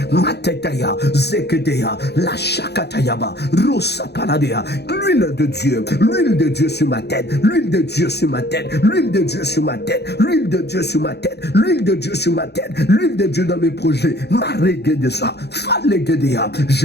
Matetaya, Zekedea, La Shakatayaba, Rosa Paladea. L'huile de Dieu sur ma tête, l'huile de Dieu sur ma tête, l'huile de Dieu sur ma tête, l'huile de Dieu sur ma tête, l'huile de Dieu sur ma tête, l'huile de Dieu dans mes projets. Maregedesa, Falegedea,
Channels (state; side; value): late; right; 0.48 ms